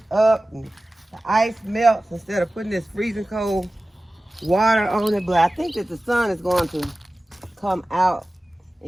up and the ice melts instead of putting this freezing cold water on it. But I think that the sun is going to come out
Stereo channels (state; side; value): normal; both; correlation 0.96